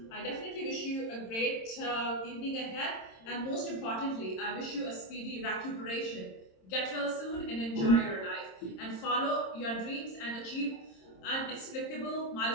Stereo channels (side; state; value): right; late; 26 ms